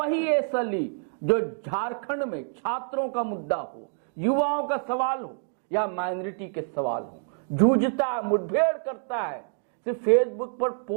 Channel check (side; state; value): left; silent; 60 dB below the other